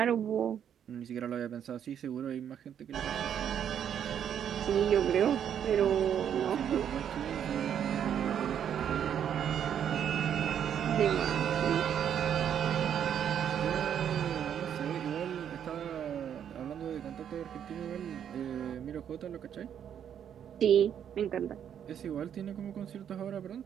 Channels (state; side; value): quieter; left; 9.0 dB